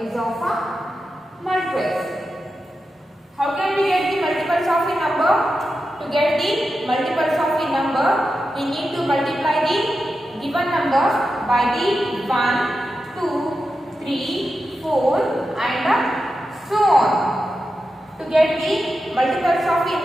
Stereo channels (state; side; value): normal; both; correlation 0.90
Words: of multiples. How can we get the multiples of a number? To get the multiples of a number, we need to multiply the given number by the 1, 2, 3, 4 and so on. To get the multiples of a